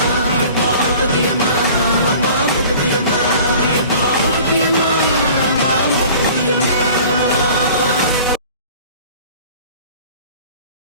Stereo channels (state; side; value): inverted; both; correlation -0.46